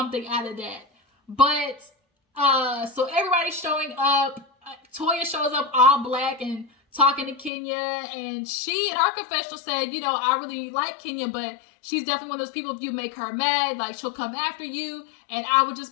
out of that. But, so everybody's showing up. Toya shows up all black and talking to Kenya, and she in her confessional said, you know, I really like Kenya, but she's definitely one of those people, if you make her mad, like, she'll come after you, and I would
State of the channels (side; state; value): right; drops out; at 7.5 s